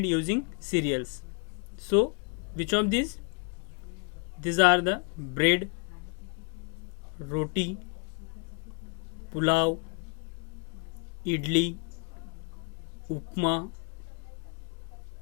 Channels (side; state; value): right; quieter; 35.1 dB